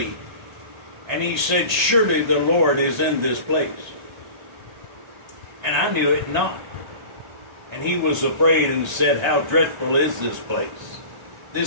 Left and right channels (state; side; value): late; left; 1.3 ms